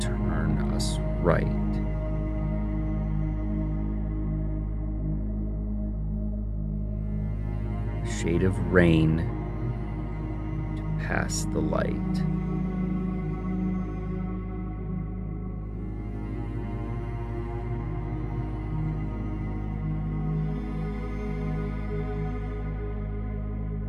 turn us right. A shade of rain to pass the light.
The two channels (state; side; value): identical; both; correlation 1.00